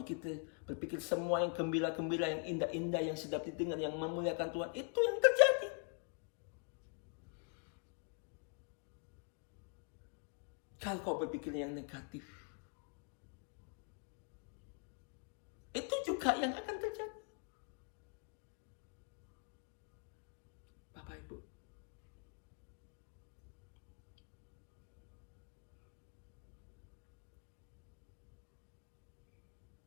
semua yang gembira-gembira, yang indah-indah, yang sedap didengar, yang memuliakan Tuhan, itu yang terjadi. Kalau kau berpikir yang negatif, itu juga yang akan terjadi. Bapak Ibu.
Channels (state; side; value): quieter; right; 36.7 dB